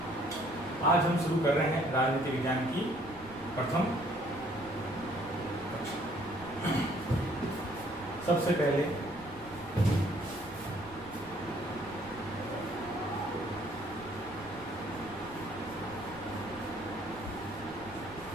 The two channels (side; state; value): right; noise; rumble, 19 dB below the sound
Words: आज हम शुरू कर रहे हैं राजनीति विज्ञान की प्रथम कक्षा। सबसे पहले